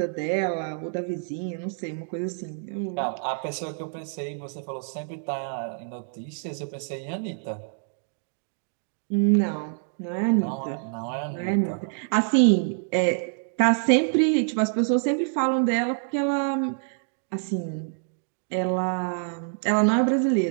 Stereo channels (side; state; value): left; silent; digital silence